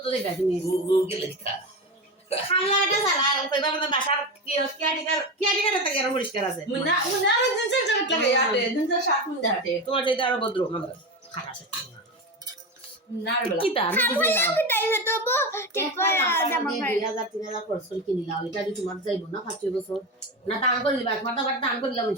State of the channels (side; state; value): both; normal; correlation 0.20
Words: যাইবা তুমি গুগল লেখা খালা এটা সালা কইবা মানে বাসার কি আটিকার একটা গের পরিষ্কার আছে মুন্না আর জিন্সের জ্যাকেট লাগে আটে জিন্সের শার্ট মুন্না হাটে তোমার চাইতে আরো ভদ্র আমরা খারাপ আছে না রে বলা কি তা আমি বুঝি না আমি তাই তো ঠিক করে জামা পাই 2000-3000 খরচ করে কিনিলাম এটা যদি তোমার যাইব না 5 বছর না দান করে দিবা তোমার তো আবার দান করে দিলাম